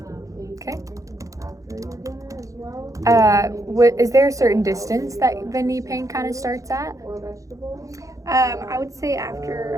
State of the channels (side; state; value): left; late; 0.16 ms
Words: Okay. Is there a certain distance that the knee pain kind of starts at? I would say